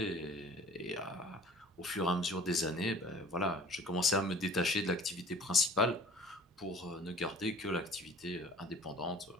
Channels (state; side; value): normal; both; correlation 0.48